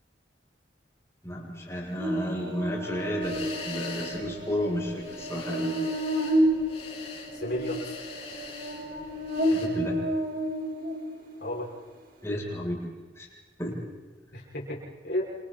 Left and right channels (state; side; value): normal; both; correlation 0.61